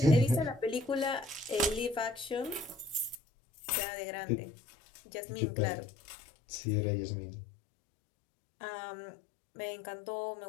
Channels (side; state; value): right; drops out; at 3.2 s